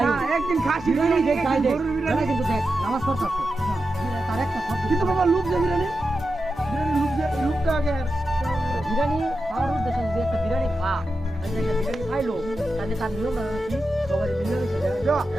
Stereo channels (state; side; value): normal; both; correlation 0.90